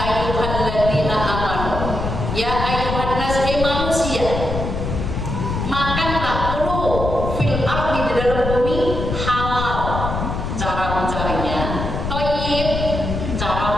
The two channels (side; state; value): left; noise; rumble, 3 dB below the sound